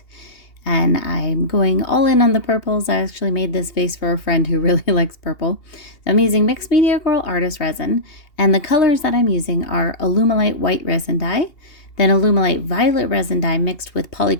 and I'm going all in on the purples. I actually made this vase for a friend who really likes purple. So I'm using Mixed Media Girl Artist Resin, and the colors that I'm using are Alumilite White Resin Dye, then Alumilite Violet Resin Dye mixed with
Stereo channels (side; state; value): right; late; 2.8 ms